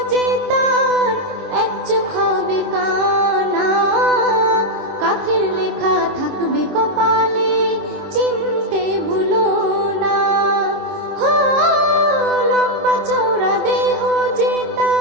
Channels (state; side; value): late; left; 26 ms